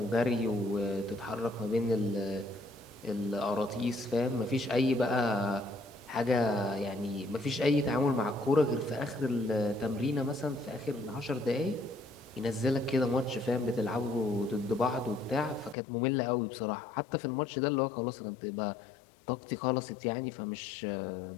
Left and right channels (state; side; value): drops out; right; at 15.8 s